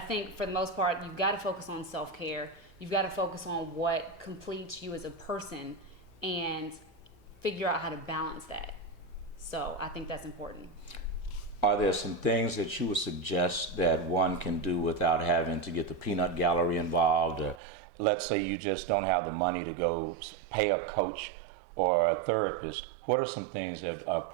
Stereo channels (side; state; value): left; drops out; at 17.6 s